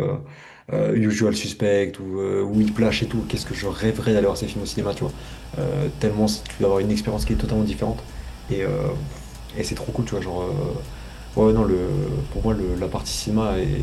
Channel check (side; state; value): both; identical; correlation 1.00